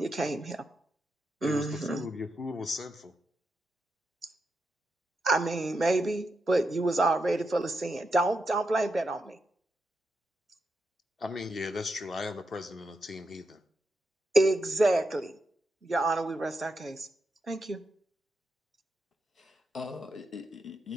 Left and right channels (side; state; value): both; normal; correlation 0.85